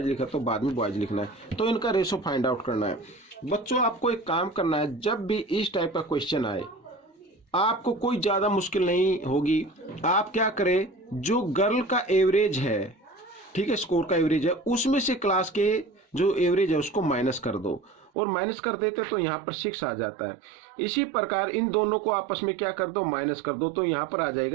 लिखा तो बाद में बॉयज लिखना है, तो इनका रेशो फाइंड आउट करना है। बच्चों आपको एक काम करना है, जब भी इस टाइप का क्वेश्चन आए आपको कोई ज्यादा मुश्किल नहीं होगी। आप क्या करें, जो गर्ल का एवरेज है, ठीक है, स्कोर का एवरेज है, उसमें से क्लास के जो एवरेज है उसको माइनस कर दो, और माइनस कर देते तो यहाँ पर 6 आ जाता है। इसी प्रकार इन दोनों को आपस में क्या कर दो, माइनस कर दो, तो यहाँ पर आ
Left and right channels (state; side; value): drops out; left; at 18.1 s